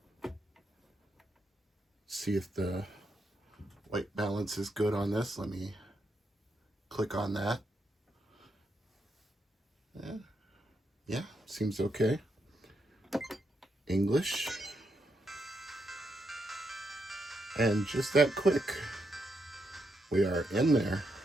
See if the white balance is good on this. Let me click on that. Yeah, seems okay. English. And just that quick, we are in there.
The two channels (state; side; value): normal; both; correlation 0.81